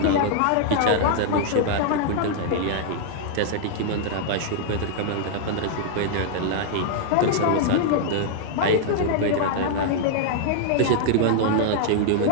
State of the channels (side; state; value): both; different; correlation -0.01